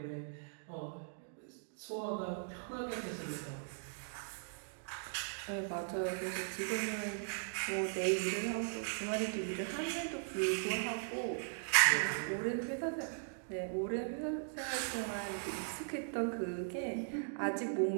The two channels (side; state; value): left; silent; digital silence